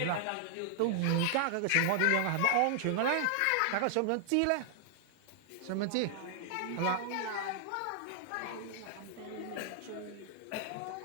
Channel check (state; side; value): different; both; correlation -0.01